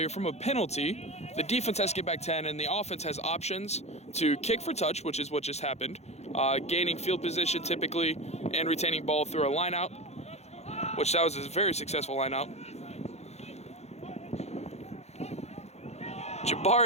from a penalty, the defense has to get back 10 and the offense has options to kick for touch, which is what just happened, gaining field position typically, and retaining ball through a line out, which that was a very successful line out.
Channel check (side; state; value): right; late; 0.31 ms